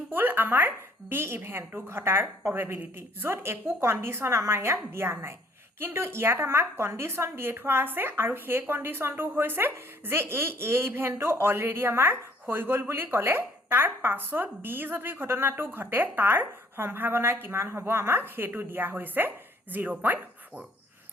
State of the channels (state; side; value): normal; both; correlation 0.60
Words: আমাৰ B ইভেন্টটো ঘটাৰ probability য'ত একো কণ্ডিশ্যন আমাৰ ইয়াত দিয়া নাই, কিন্তু ইয়াত আমাক কণ্ডিশ্যন দিয়ে থোৱা আছে আৰু সেই কণ্ডিশ্যনটো হৈছে যে এই A ইভেন্টটো অলৰেডি আমাৰ হৈ গ'ল বুলি ক'লে তাৰ পাছত B যদি ঘটনাটো ঘটে তাৰ সম্ভাৱনা কিমান হ'ব আমাক সেইটো দিয়া হৈছে 0.4।